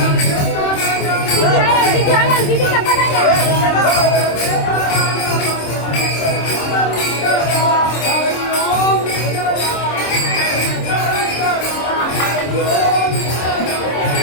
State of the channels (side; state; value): right; late; 26 ms